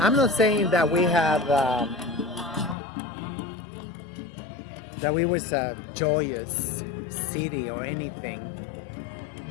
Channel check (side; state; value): right; drops out; at 2.8 s